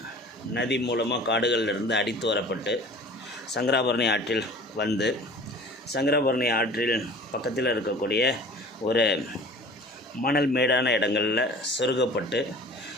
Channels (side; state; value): both; normal; correlation 0.44